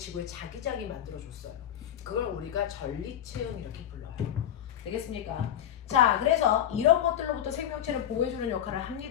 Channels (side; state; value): right; quieter; 10.4 dB